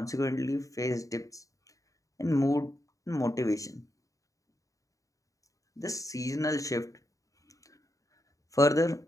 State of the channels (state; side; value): late; right; 0.16 ms